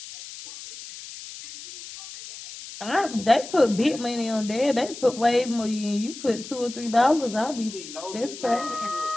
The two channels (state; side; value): noise; left; hiss, 13 dB below the sound